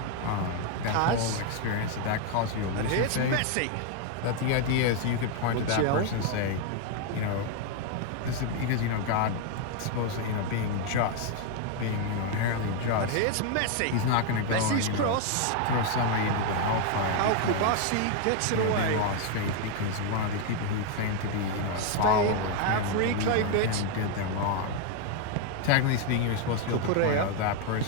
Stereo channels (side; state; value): both; different; correlation 0.01